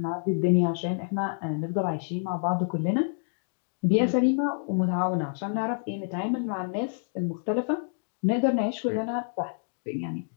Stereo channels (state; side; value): silent; right; digital silence